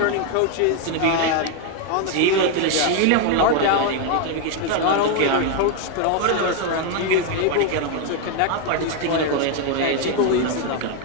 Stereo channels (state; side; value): different; both; correlation 0.01